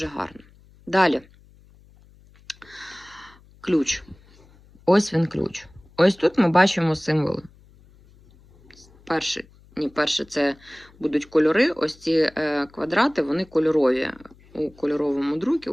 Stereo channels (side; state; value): left; noise; hum, 27 dB below the sound